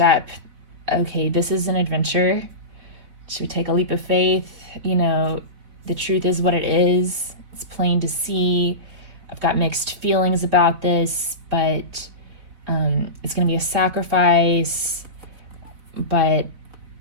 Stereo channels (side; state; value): left; late; 4.3 ms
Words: Okay, this is an adventure. Should we take a leap of faith? The truth is what it is. It's plain to see. I've got mixed feelings about this, but it's going to be a sacrifice. But